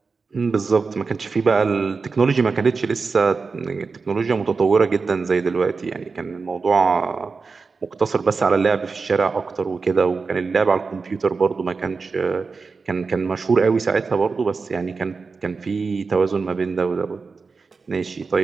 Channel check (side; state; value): left; quieter; 4.6 dB